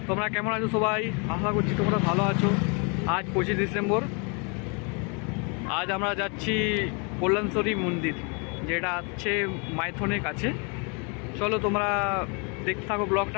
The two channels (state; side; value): quieter; right; 34.2 dB